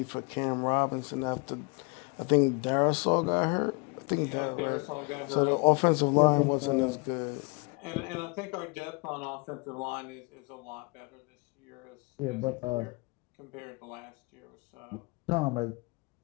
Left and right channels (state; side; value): quieter; right; 30.4 dB